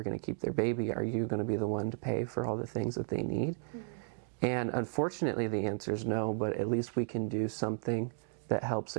going to keep their baby? Are you going to be the one to pay for all the things that they need? And unfortunately the answer is no, but at least we can do something that helps,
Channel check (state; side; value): silent; left; digital silence